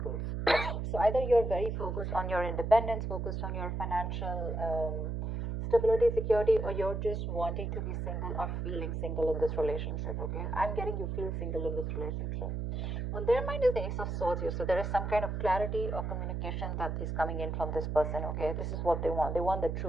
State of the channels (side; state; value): right; noise; hum, 3 dB below the sound